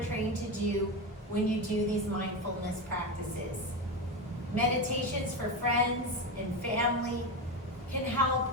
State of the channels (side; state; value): both; normal; correlation 0.17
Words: trained to do when you do these mindfulness practices. Meditations for friends and family can help